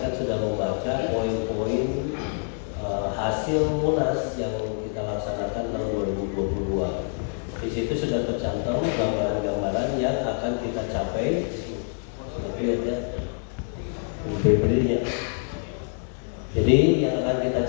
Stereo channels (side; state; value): right; silent; 57 dB below the other